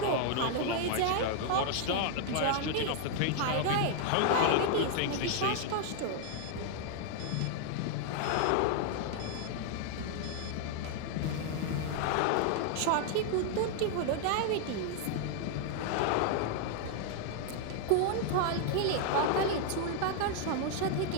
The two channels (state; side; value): different; both; correlation 0.00